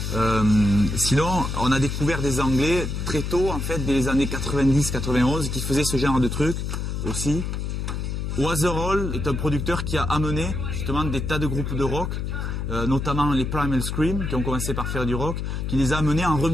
Sinon, on a découvert des Anglais très tôt, en fait, dès les années 90-91, qui faisaient ce genre de trucs aussi. Waterall est un producteur qui a amené justement des tas de groupes de rock, notamment les Primal Scream, qui ont commencé par faire du rock, qui les a amenés en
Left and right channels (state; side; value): noise; left; hum, 3 dB below the sound